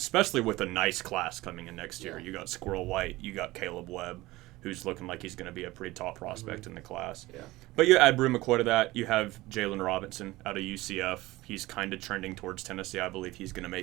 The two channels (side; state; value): left; quieter; 19.1 dB